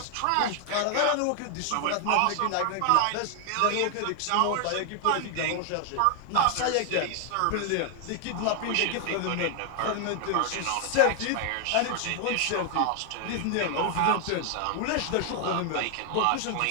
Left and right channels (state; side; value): different; both; correlation 0.00